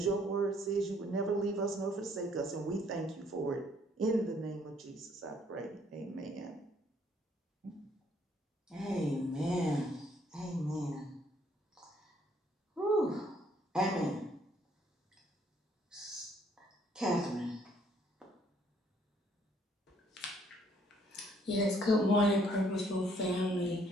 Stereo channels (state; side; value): normal; both; correlation 0.65